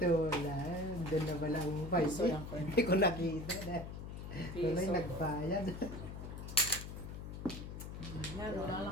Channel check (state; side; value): noise; left; hum, 8 dB below the sound